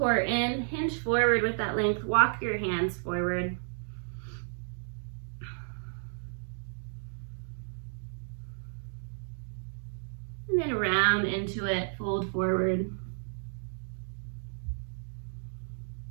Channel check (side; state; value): left; silent; digital silence